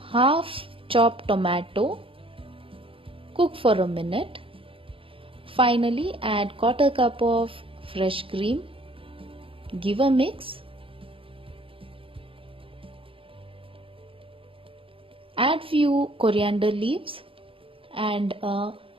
half chopped tomato. Cook for a minute. Finally, add quarter cup of fresh cream. Give a mix. Add few coriander leaves and a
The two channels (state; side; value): late; left; 0.26 ms